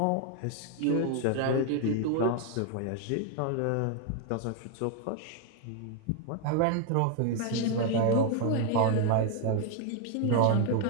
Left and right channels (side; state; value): both; different; correlation 0.00